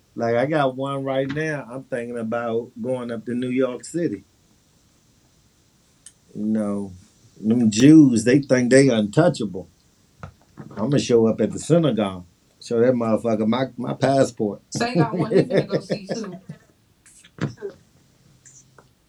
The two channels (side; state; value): both; identical; correlation 1.00